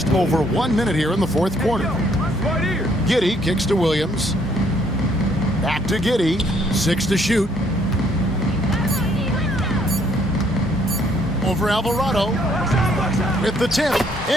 over 1 minute here in the fourth quarter. Giddey kicks to Williams. Back to Giddey. 6 to shoot. Over Alvarado. With the tip.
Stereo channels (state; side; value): normal; both; correlation 0.66